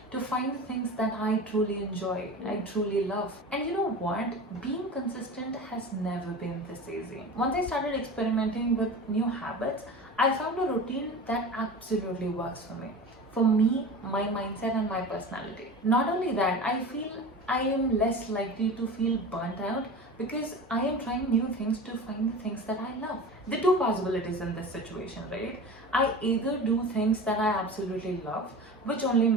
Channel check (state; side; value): normal; both; correlation 0.33